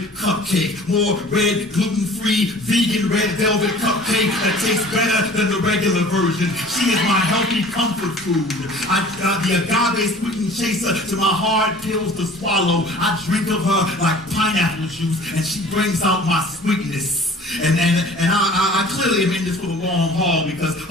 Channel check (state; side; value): normal; both; correlation 0.47